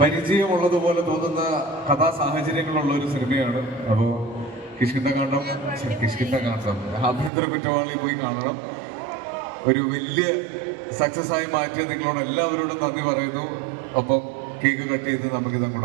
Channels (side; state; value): left; drops out; at 7.3 s